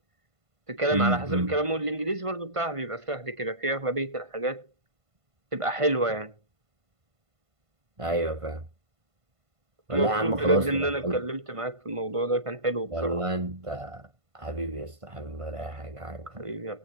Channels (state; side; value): late; left; 1.5 ms